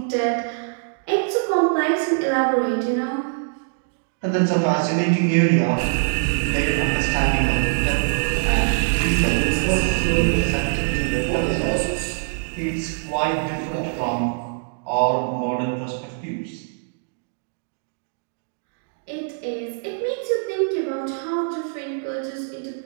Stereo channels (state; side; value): silent; left; digital silence